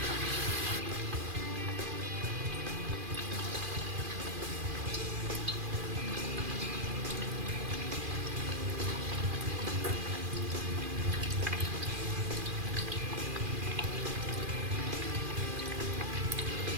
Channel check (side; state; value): left; late; 2.4 ms